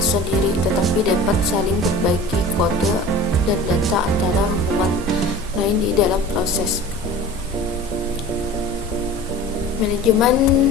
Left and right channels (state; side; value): normal; both; correlation 0.40